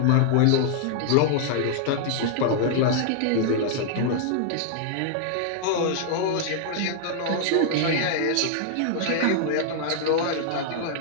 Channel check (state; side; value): different; both; correlation -0.01